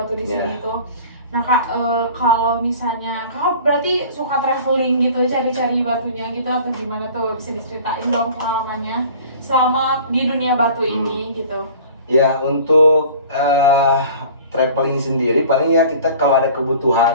di sini Ya. tuh. Nah Kak, kalau misalnya Kakak berarti suka traveling gitu, cari-cari batunya gitu atau gimana tuh? Bisa diceritain dong pengalamannya selama di dunia batu ini gitu. Ya, untuk traveling sendiri paling ya kita kalau ada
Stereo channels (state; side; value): inverted; both; correlation -0.44